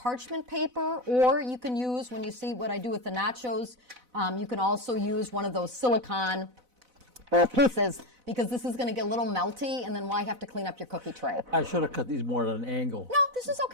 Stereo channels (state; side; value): late; left; 4.0 ms